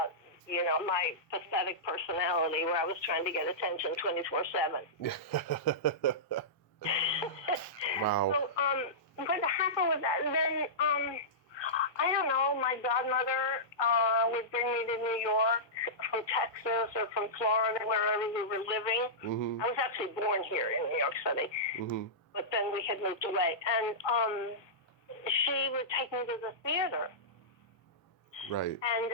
my pathetic personality where I was trying to get attention 24/7. Wow. So, what happened with that? Then, I don't know, my godmother would bring me to New York from Texas or from Florida, wherever we were living. Mm-hmm. I was actually born here in New York City, mm-hmm. but then we had moved away. And she would take me to the theater. Right. And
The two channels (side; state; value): right; late; 1.4 ms